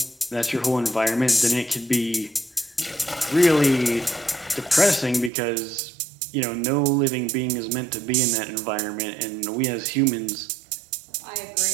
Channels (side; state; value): left; drops out; at 5.3 s